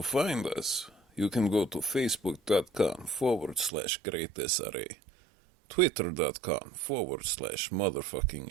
find us, you can go to facebook.com/greatsra,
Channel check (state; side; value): drops out; left; at 3.7 s